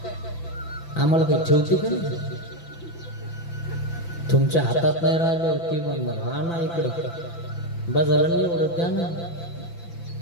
आम्हाला काही ठेवते का नाही? तुमच्या हातात नाही राहिलं ती म्हणणार हा ना इकडं बाजारला नाही एवढं द्या ना,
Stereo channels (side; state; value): right; late; 5.9 ms